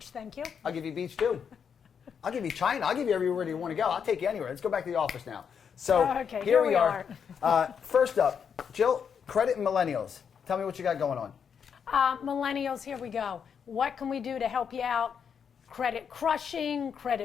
thank you. I'll give you beach too. I'll give you China. I'll give you everywhere you want to go. I'll take you anywhere. Let's go back to the office now. So okay, here we are. First up, Jill, credit and millennials. Tell me what you got going on. Millennials, here we go. What can we do to help you out? Credit crushing,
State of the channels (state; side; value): quieter; right; 7.1 dB